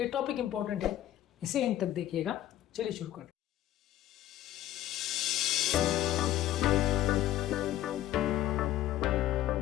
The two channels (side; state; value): right; quieter; 13.2 dB